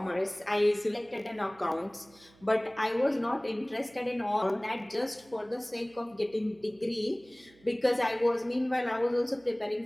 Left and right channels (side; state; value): right; noise; hum, 28 dB below the sound